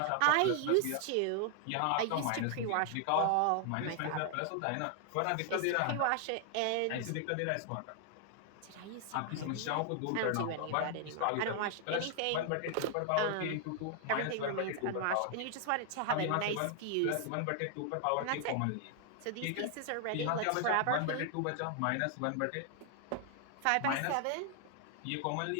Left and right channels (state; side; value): different; both; correlation 0.00